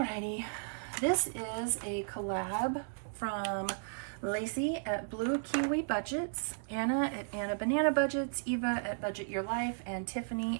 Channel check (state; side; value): silent; left; digital silence